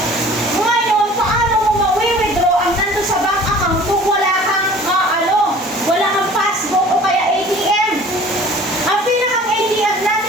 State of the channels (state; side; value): normal; both; correlation 0.47